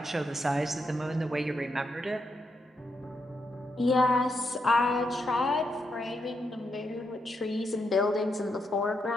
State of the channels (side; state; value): both; normal; correlation 0.81